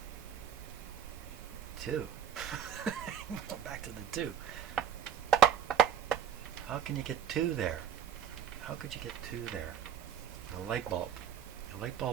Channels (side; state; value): left; quieter; 8.6 dB